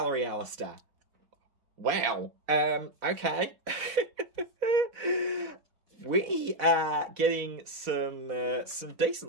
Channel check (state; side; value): late; left; 4.1 ms